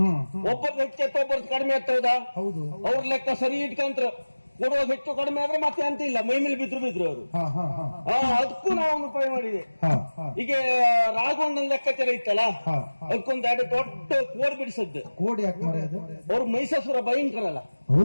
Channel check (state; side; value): inverted; both; correlation -1.00